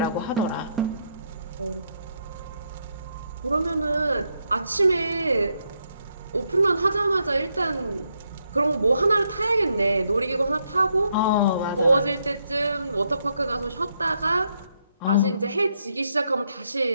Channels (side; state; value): both; inverted; correlation -0.78